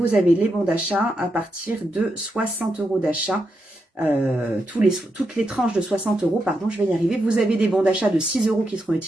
avez les bons d'achat à partir de 60 € d'achat. Toutes les tranches de 60 €, pardon, je vais y arriver. Vous avez des bons d'achat de 6 € qui seront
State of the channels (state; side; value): normal; both; correlation 0.84